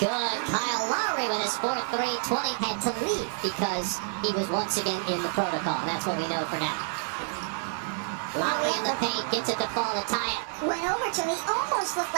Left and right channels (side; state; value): left; silent; 59 dB below the other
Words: Kyle Lowry with his 4th 3. 20 had to leave because he was once again in the protocol. That's what we know for now. Lowry in the paint, gets it to fall to tie it. Went over to him. He almost looked